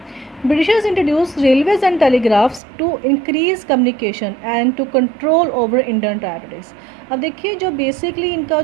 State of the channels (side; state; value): left; drops out; at 2.6 s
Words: Britishers introduced railways and telegraphs to increase communication and to control over Indian territories. अब देखिए जो basically इनका